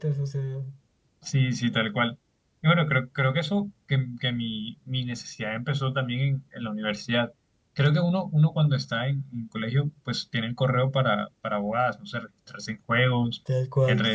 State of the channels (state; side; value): identical; both; correlation 1.00